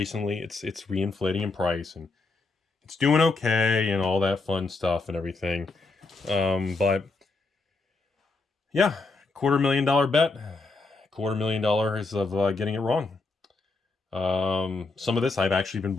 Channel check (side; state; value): right; quieter; 3.7 dB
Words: it's reinflating in price and it's doing okay and all that fun stuff and everything. But yeah, $250,000 bet. $250,000 of getting it wrong. Some of this I've actually been